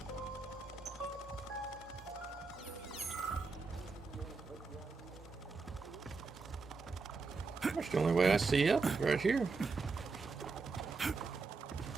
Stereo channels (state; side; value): quieter; left; 4.3 dB